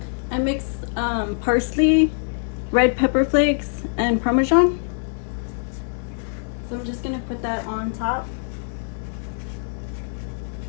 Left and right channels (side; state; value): right; silent; digital silence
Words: I mixed parsley, red pepper flakes, and Parmesan. So I'm just gonna put that on top